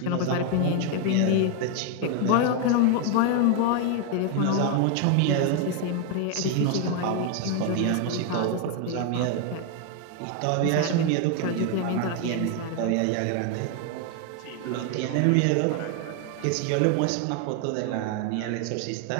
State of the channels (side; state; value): both; different; correlation 0.01